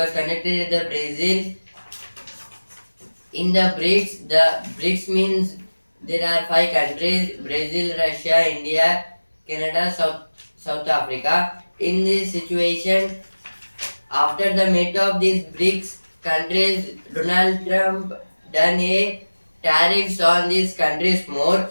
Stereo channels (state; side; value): inverted; both; correlation -1.00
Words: conducted at the Brazil. In the BRICS means there are 5 countries: Brazil, Russia, India, Canada, South Africa. In this situation, after the meet of these BRICS countries, Donald Trump done a tariffs on these countries more,